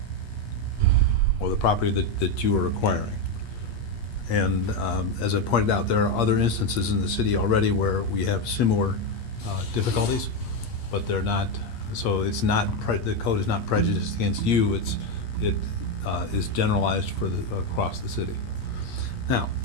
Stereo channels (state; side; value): late; right; 8.4 ms